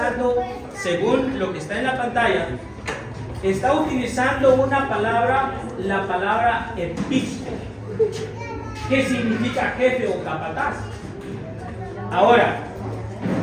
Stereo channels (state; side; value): identical; both; correlation 1.00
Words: según lo que está en la pantalla, está utilizando una palabra, la palabra episco, que significa jefe o capataz. Ahora,